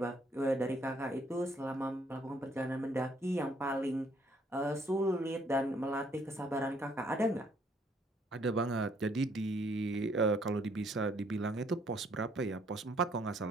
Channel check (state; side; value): normal; both; correlation 0.66